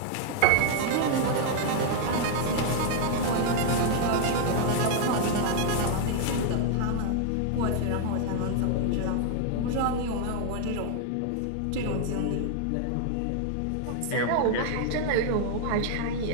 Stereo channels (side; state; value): both; different; correlation 0.00